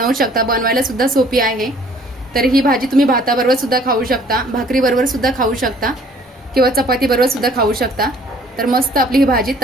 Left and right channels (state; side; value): normal; both; correlation 0.56